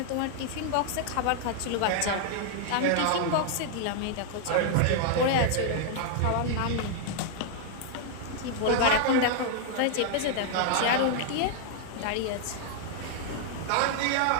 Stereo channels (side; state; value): both; different; correlation 0.00